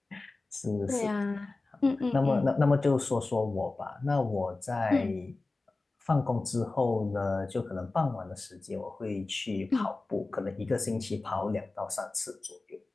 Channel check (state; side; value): quieter; right; 3.4 dB